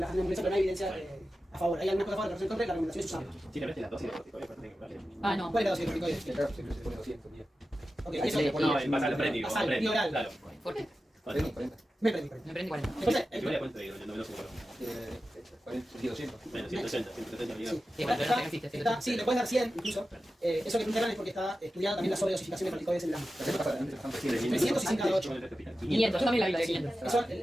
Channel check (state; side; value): normal; both; correlation 0.93